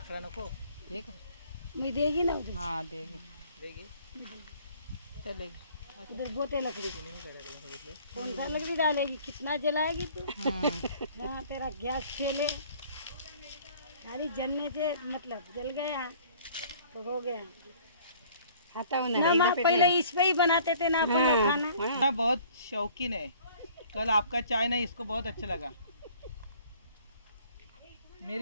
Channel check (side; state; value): both; inverted; correlation -0.53